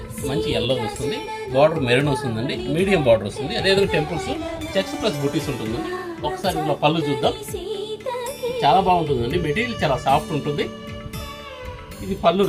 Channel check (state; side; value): identical; both; correlation 1.00